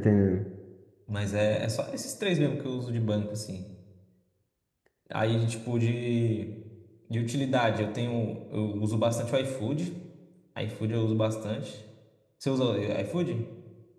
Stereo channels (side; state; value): both; identical; correlation 1.00